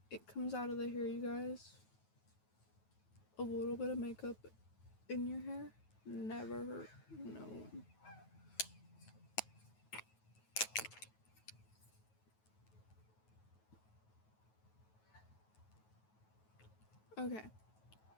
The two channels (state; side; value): late; right; 9.3 ms